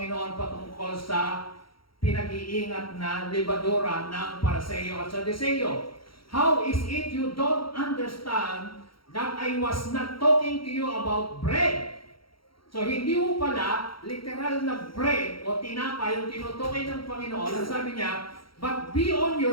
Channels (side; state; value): right; late; 0.74 ms